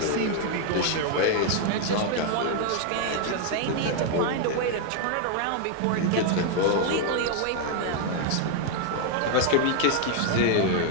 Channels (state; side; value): different; both; correlation 0.00